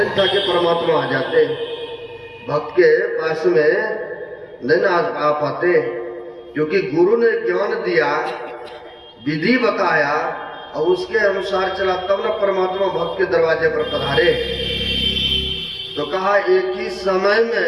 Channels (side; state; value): both; identical; correlation 1.00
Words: था कि परमात्मा आ जाते। भक्त के पास में नहीं आ पाते, क्योंकि गुरु ने ज्ञान दिया, विधि बताया, और उसके अनुसार चला, तब ना परमात्मा भक्त के दरवाजे पर पधारे। तो कहा एक ही समय